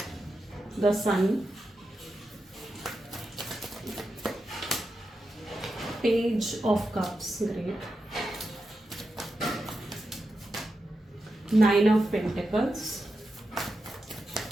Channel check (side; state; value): both; normal; correlation 0.89